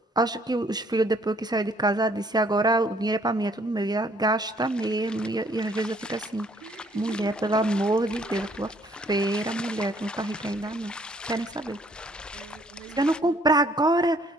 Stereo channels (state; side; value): normal; both; correlation 0.62